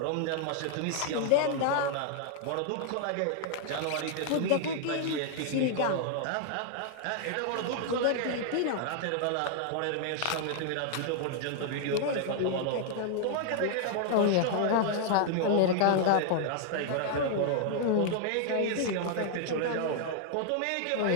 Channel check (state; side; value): different; both; correlation 0.00